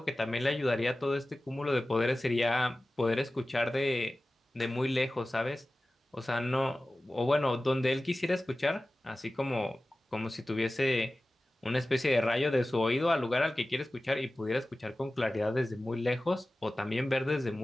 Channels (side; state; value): both; normal; correlation 0.96